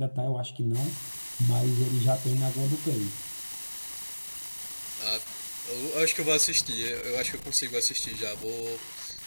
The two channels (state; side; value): inverted; both; correlation -1.00